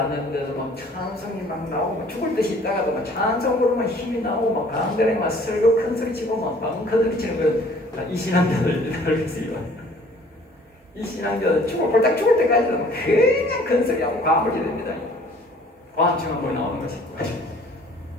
하는데도 막 찬송이 막 나오고, 막 죽을 듯이 있다가도 막 찬송 부르면 힘이 나오고, 막 가운데에 막 설교 큰 소리 치고, 막 방커들이 치는 거, 이 신앙자들 알겠어요. 이 신앙자들 꼴딱 죽을 때까지도 그냥 큰 소리하고 과물이 됩니다. 과음증 한번 나오는 것이.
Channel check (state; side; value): normal; both; correlation 0.54